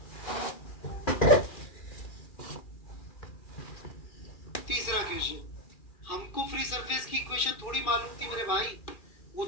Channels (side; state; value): right; late; 2.4 ms